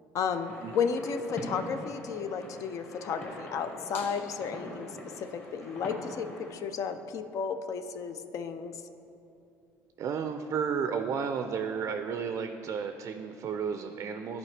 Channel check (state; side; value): normal; both; correlation 0.47